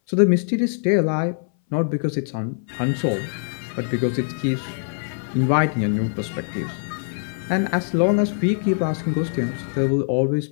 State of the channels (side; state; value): right; silent; 60 dB below the other